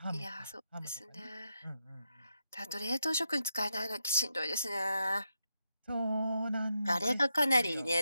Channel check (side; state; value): both; inverted; correlation -0.84